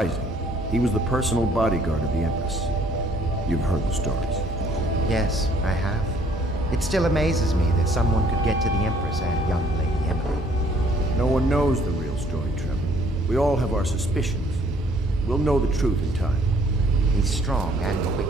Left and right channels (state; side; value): normal; both; correlation 0.61